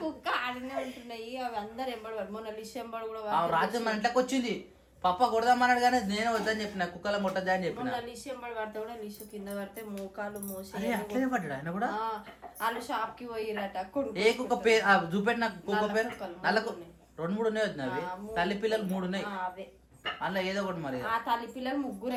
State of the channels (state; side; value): identical; both; correlation 1.00